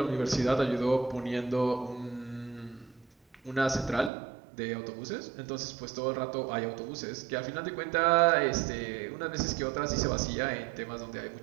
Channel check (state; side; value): drops out; left; at 4.1 s